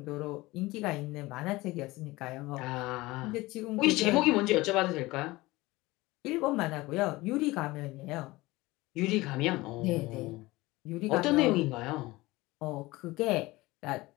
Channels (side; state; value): right; quieter; 20.3 dB